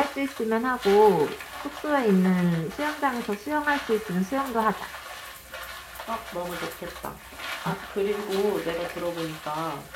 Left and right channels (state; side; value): identical; both; correlation 1.00